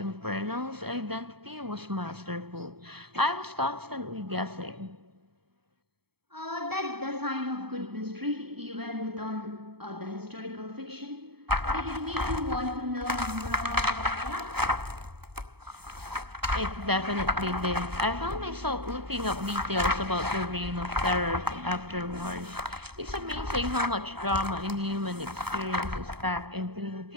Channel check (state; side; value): late; left; 0.97 ms